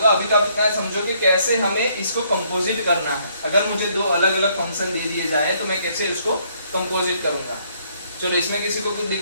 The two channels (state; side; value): inverted; both; correlation -0.68